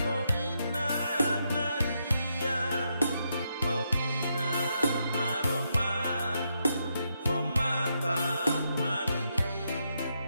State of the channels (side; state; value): both; inverted; correlation -0.81